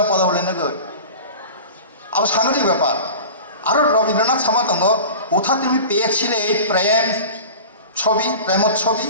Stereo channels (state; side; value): inverted; both; correlation -0.36